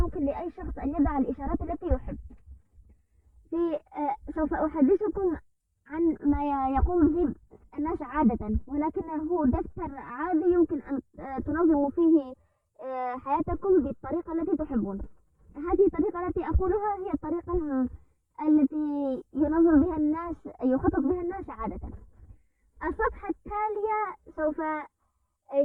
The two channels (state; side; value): identical; both; correlation 1.00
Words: لأي شخص أن يضع الإشارات التي يحب. سوف أحدثكم عن ما يقوم به الناس عادة، ولكنه دفتر عادي يمكن أن تنظموا فيه حياتكم بالطريقة التي تحبون. هذه الطريقة التي أقولها هي الطريقة التي يخطط بها الناس عادة. الصفحة التالية سوف